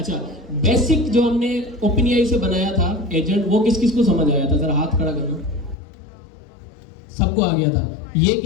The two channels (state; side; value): drops out; right; at 5.8 s